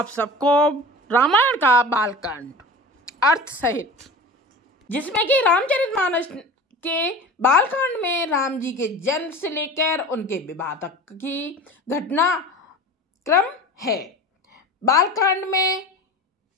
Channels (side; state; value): both; normal; correlation 0.35